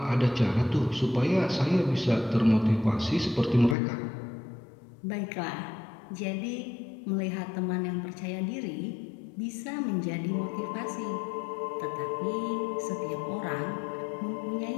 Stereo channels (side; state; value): right; drops out; at 3.8 s